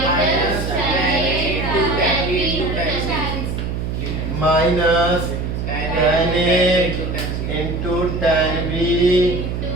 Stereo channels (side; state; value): right; noise; hum, 3 dB below the sound